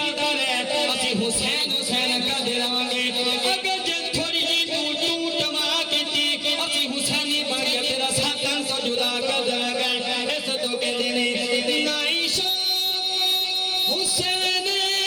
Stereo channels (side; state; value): both; identical; correlation 1.00